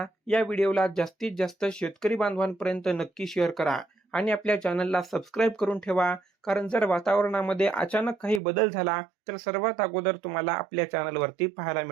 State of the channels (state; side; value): drops out; left; at 8.4 s